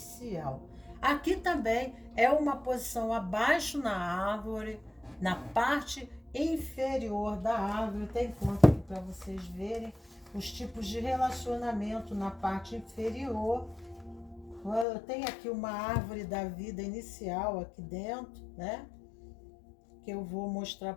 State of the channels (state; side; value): drops out; right; at 14.9 s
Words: Aqui também é uma posição abaixo na árvore, na parte inferior da árvore. Tem conta aqui para vocês verem os tipos de relacionamento na parte inferior. Eu tenho aqui uma árvore da vida inicial aqui dentro, né? Que eu vou mostrar